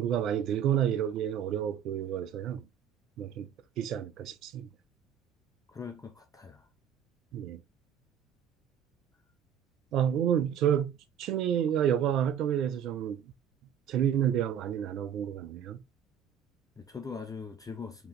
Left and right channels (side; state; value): left; quieter; 9.1 dB